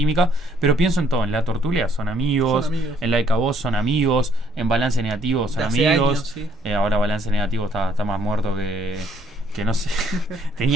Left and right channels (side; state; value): both; normal; correlation 0.66